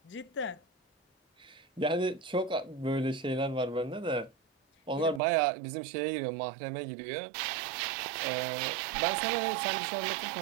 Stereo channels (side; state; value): left; drops out; at 5.2 s